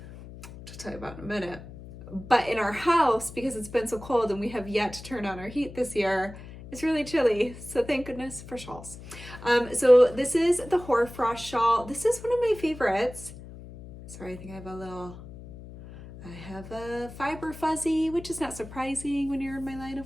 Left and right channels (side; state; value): left; noise; hum, 15 dB below the sound